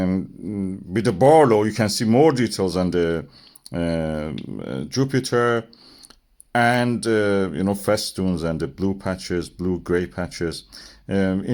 with the Barlow, you can see more details on the Jupiter, and festoons and the blue patches, blue-gray patches.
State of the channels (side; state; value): both; identical; correlation 1.00